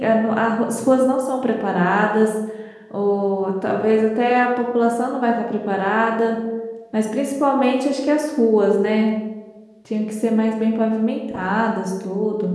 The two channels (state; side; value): identical; both; correlation 1.00